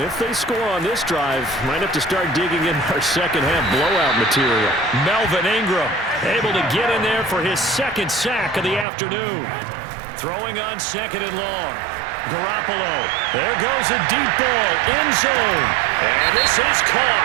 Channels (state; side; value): drops out; left; at 8.8 s